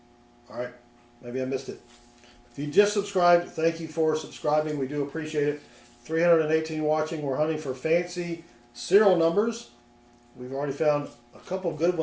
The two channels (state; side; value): identical; both; correlation 1.00